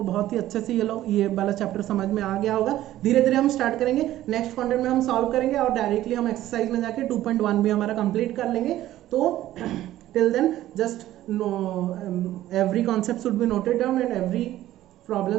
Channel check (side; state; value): left; quieter; 14.0 dB